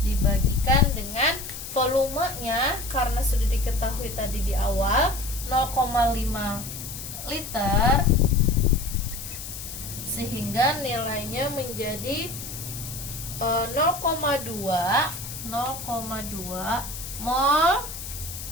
dibagikan dengan volumenya, karena sudah diketahui tadi di awal 0,5 liter, sehingga nilainya menjadi 0,2 mol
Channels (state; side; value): noise; left; hiss, 9 dB below the sound